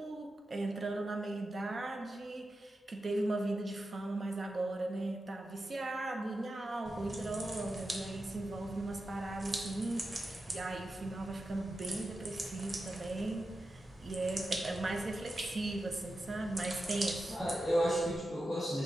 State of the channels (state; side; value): normal; both; correlation 0.91